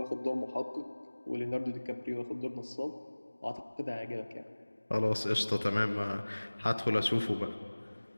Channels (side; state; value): both; inverted; correlation -1.00